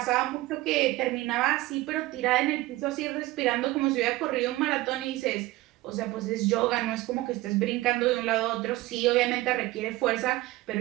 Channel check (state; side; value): quieter; left; 18.7 dB